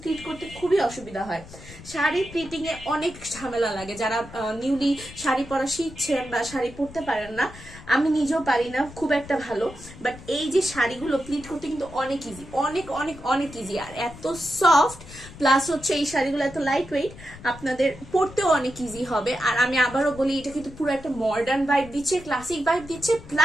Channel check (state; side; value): noise; left; rumble, 17 dB below the sound